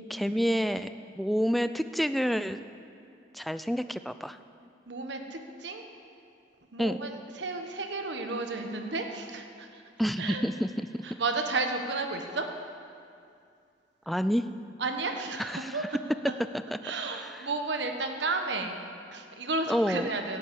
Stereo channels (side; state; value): both; normal; correlation 0.59